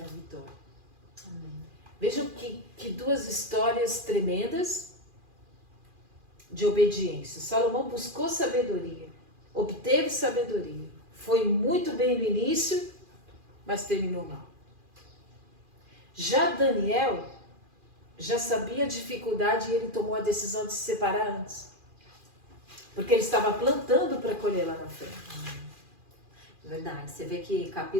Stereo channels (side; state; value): left; late; 2.4 ms